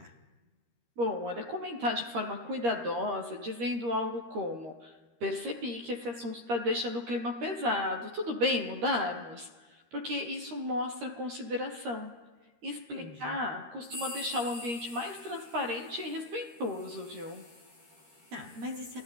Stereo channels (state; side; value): late; left; 13 ms